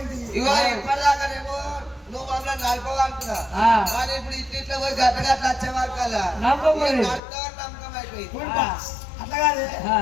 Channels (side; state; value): right; drops out; at 7.2 s